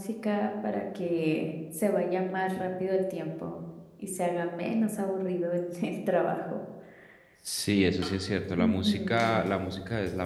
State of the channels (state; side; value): identical; both; correlation 1.00